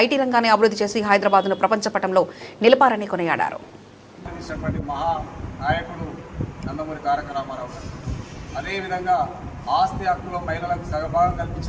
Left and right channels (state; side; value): identical; both; correlation 1.00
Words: ఐటీ రంగాన్ని అభివృద్ధి చేసి హైదరాబాద్ను ప్రపంచ పటంలో నిలిపారని కొనియాడారు. నాయకుడు నందమూరి తారక రామారావు గారు, అదేవిధంగా ఆస్తి హక్కులో మహిళలకు సగభాగం